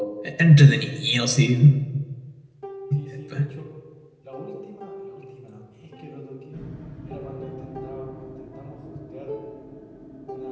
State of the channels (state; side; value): identical; both; correlation 1.00